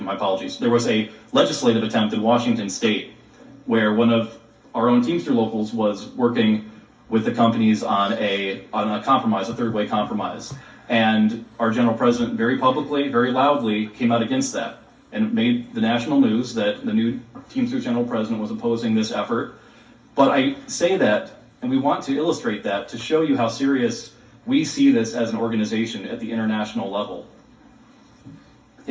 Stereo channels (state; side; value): identical; both; correlation 1.00